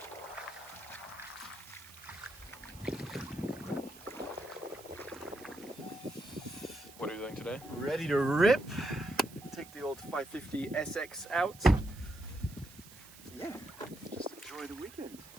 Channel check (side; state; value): right; noise; hiss, 19 dB below the sound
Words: What are you doing today? Ready to rip. Take the old 550 SX out. Yeah, just enjoy the weekend.